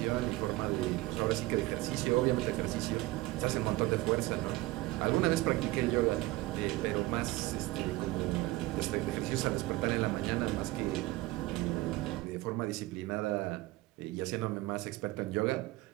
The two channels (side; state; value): left; quieter; 19.5 dB